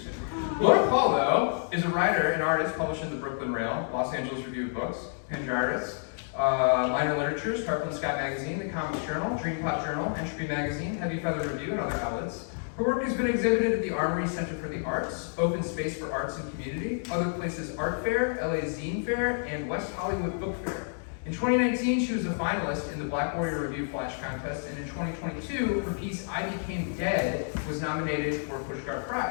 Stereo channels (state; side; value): silent; right; digital silence